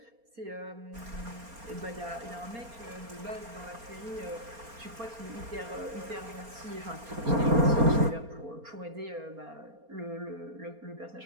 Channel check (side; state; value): left; late; 4.3 ms